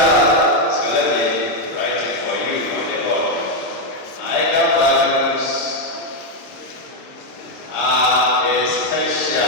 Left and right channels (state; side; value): late; right; 26 ms